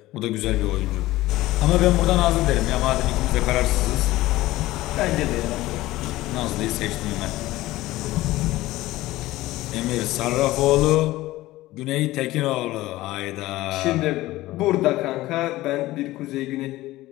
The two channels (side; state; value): right; quieter; 17.3 dB